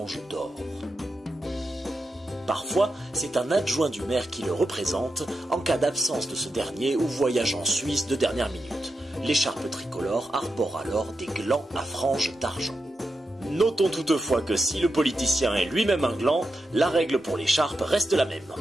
d'or. Parfois, c'est un adjoint du maire qui le représente en cas d'absence de ce dernier ou voyage en Suisse de dernière minute. L'écharpe tricolore arbore alors des glands à franges d'argent. Notons toutefois que si le politicien est lui-même un gland, la règle pour l'écharpe reste la même.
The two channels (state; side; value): normal; both; correlation 0.87